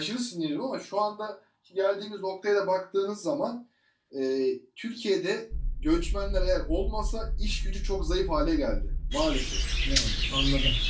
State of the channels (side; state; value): both; identical; correlation 1.00